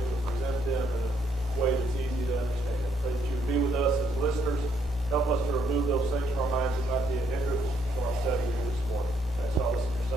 to present them in a way that's easy to understand. Pray that you would be with us as listeners. Help us to remove those things from our minds and not be a hindrance to our study here this morning. Thanks all this in your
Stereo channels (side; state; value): both; normal; correlation 0.71